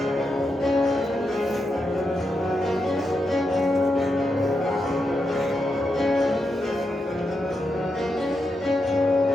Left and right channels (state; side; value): normal; both; correlation 0.86